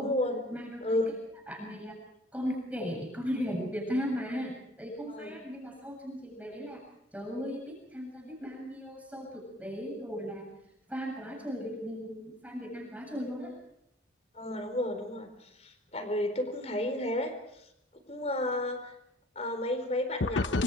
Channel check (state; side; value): normal; both; correlation 0.51